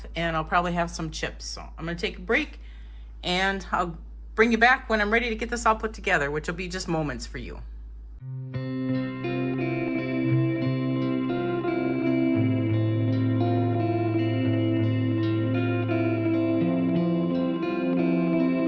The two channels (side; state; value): both; identical; correlation 1.00